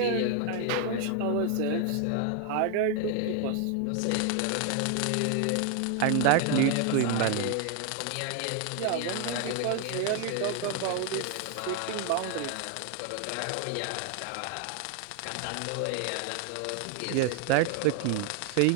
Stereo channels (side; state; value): both; different; correlation 0.01